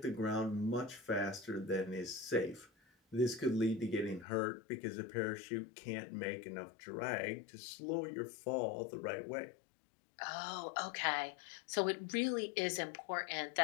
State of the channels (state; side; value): drops out; right; at 4.2 s